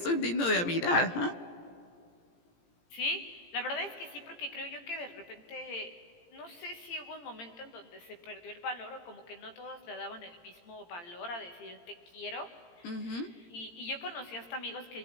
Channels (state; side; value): late; right; 17 ms